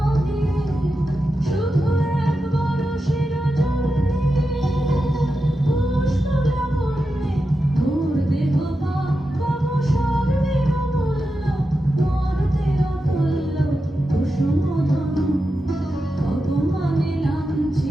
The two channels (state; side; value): normal; both; correlation 0.90